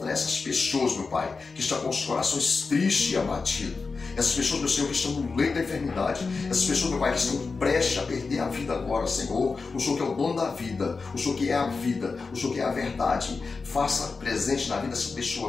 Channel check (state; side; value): quieter; right; 4.4 dB